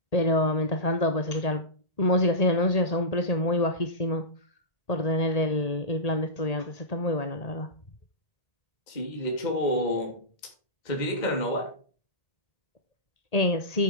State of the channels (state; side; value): late; right; 1.8 ms